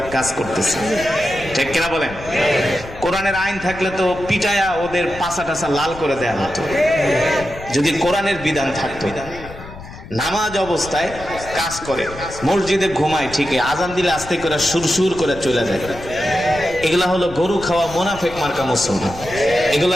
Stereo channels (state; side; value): noise; left; rumble, 15 dB below the sound